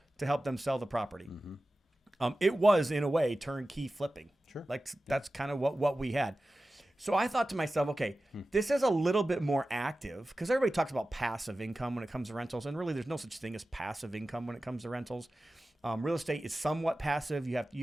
to help them sell the property. It was, in a way, turnkey flipping. Sure. Like that's kind of what we had. So I thought to myself, okay, this is a little bit more active, because everybody talks about passive income when it comes to rentals, and really there's no such thing as passive income when it comes to rentals. Real estate is somewhat passive. You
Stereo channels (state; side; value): normal; both; correlation 0.95